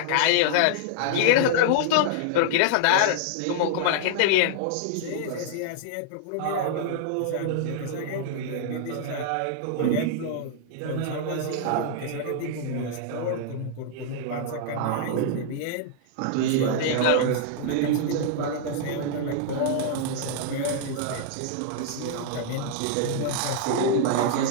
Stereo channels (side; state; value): both; different; correlation -0.01